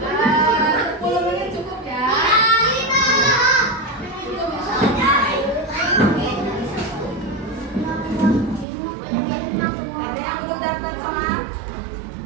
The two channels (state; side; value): drops out; left; at 8.7 s